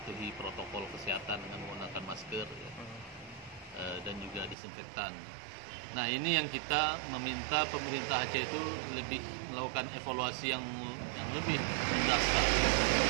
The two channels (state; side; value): drops out; left; at 4.5 s